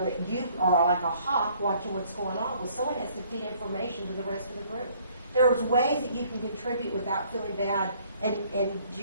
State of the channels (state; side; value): inverted; both; correlation -0.61